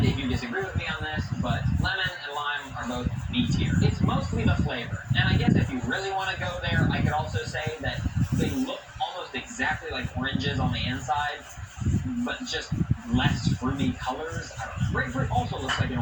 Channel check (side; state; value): both; identical; correlation 1.00